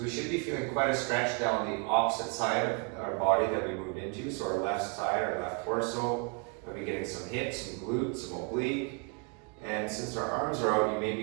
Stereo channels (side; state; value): left; quieter; 34.6 dB